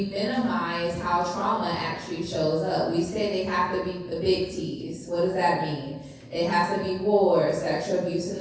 minimize how trauma actually shows up. We say they have to be the big T's. What does that mean? It has to be war, sexual abuse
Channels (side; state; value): both; identical; correlation 1.00